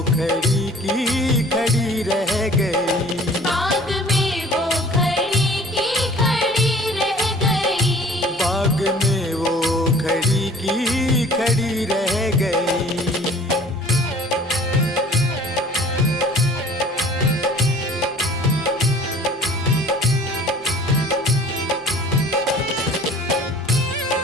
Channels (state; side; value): normal; both; correlation 0.49